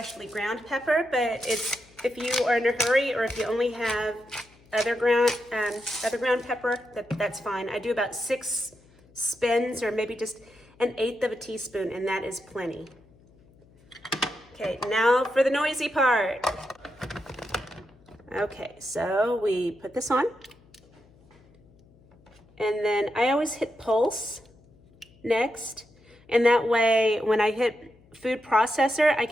ground pepper, but if you are in a hurry, or if you only have other ground pepper, that's fine. I do about 6 spins, or maybe just 1/8 of a teaspoon, and that is plenty. Okay, now for the noisy part. Okay, so we put this on, and then I always hit pulse next, and that way when I hit food processor, I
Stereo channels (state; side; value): noise; left; hum, 28 dB below the sound